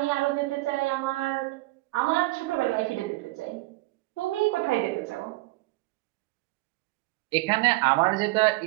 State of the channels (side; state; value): left; quieter; 21.2 dB